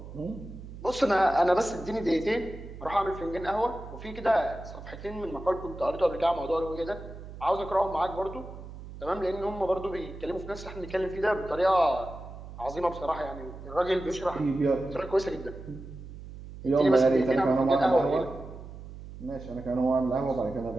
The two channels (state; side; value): noise; right; hum, 13 dB below the sound